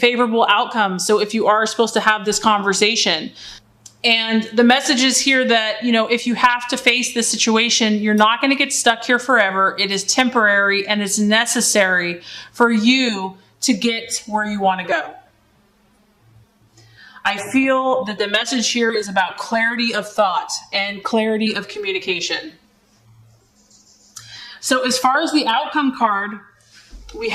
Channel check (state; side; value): identical; both; correlation 1.00